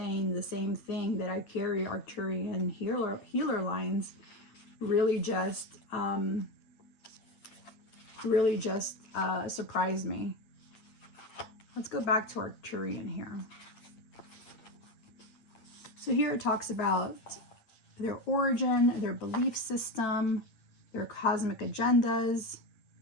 the same thing, that I carry Arcturian healer lines, really just surprised me. Let's go back to Arcturian here. So here it talks about their origin, their belief system, their cosmic agendas.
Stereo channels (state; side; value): late; right; 9.1 ms